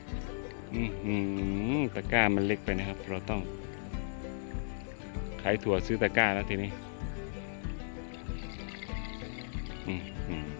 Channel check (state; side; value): silent; right; 54 dB below the other